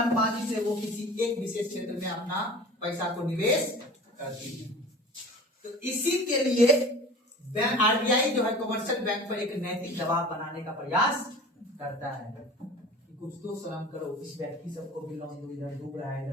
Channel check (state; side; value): normal; both; correlation 0.40